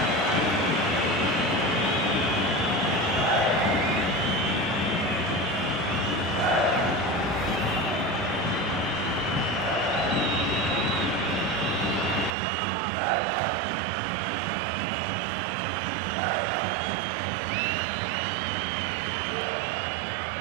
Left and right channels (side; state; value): left; drops out; at 12.3 s